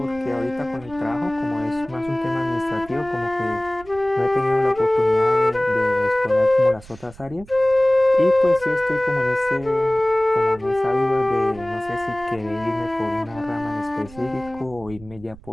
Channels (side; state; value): right; noise; rumble, 20 dB below the sound